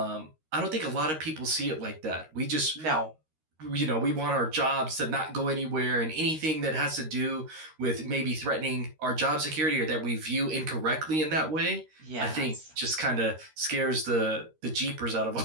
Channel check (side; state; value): left; late; 13 ms